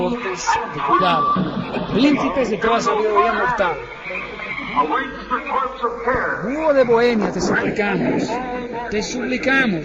de cuidado, príncipes de toda sabiduría mortal. Búho de Bohemia, te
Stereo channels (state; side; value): identical; both; correlation 1.00